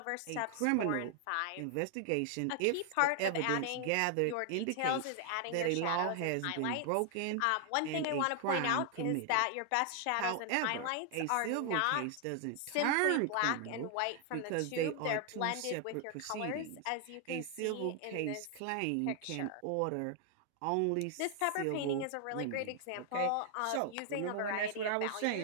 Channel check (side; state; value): both; different; correlation 0.00